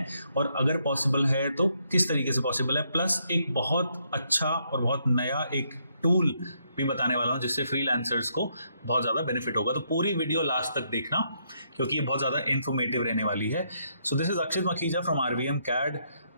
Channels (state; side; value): inverted; both; correlation -0.75